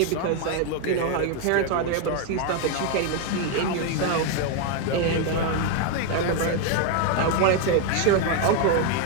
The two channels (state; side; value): different; both; correlation 0.01